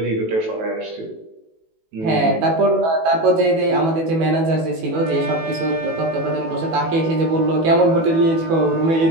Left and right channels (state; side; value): late; left; 18 ms